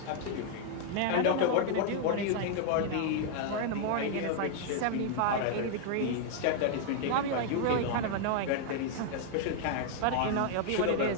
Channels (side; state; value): both; different; correlation 0.00